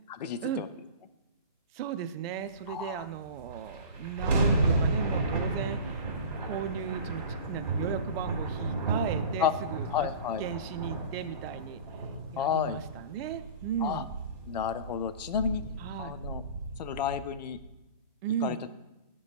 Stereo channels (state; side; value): inverted; both; correlation -0.34